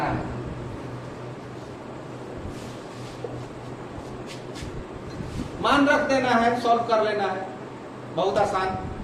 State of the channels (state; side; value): identical; both; correlation 1.00